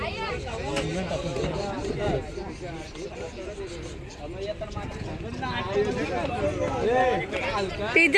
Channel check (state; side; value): identical; both; correlation 1.00